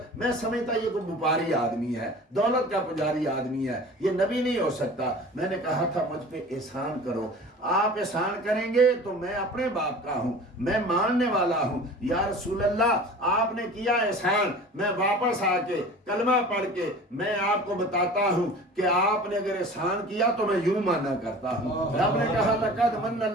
میں سمجھتا یہ کوئی وپاری آدمی ہے، دولت کا پجاری آدمی ہے، یہ نبی نہیں ہو سکتا۔ میں نے کہا تھا مجھ پہ احسان کرو، آپ احسان کریں گے تو میں اپنے باپ کا ہوں، میں ماننے والا ہوں۔ یا رسول اللہ آپ نے کیا احسان، میں واپس آ کے کلمہ پڑھ کے میں آپ کو بتاتا ہوں کہ آپ نے اگر احسان کیا تو میں یوں مانا کرتا ہوں۔ رب نے کہا لقد من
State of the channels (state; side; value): normal; both; correlation 0.41